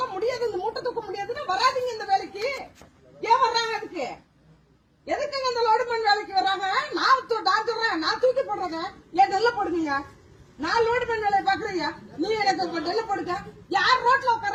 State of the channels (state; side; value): identical; both; correlation 1.00